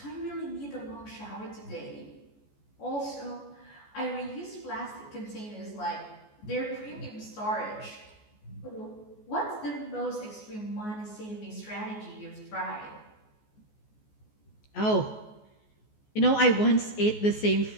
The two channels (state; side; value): late; right; 14 ms